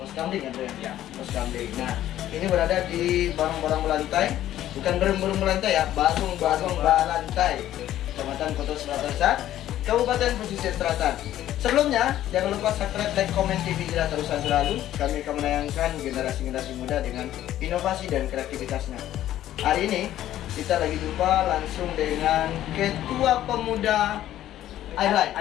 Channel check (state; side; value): quieter; right; 12.8 dB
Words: Kamling ya bro ya? Pos Kamling. Nah, ini berada di barang-barang melantai. Bukan burung-burung melantai ya, barung-barung melantai. Kecamatan Kota Selatan, Kabupaten Pesisir Selatan. Sebelumnya, jangan lupa subscribe, like, komen TV Hijrah terusan selalu. Kami akan menayangkan generasi-generasi muda dengan inovasi dan kreativitasnya. Hari ini kita lagi jumpa langsung dengan Ketua Pemuda Ireland.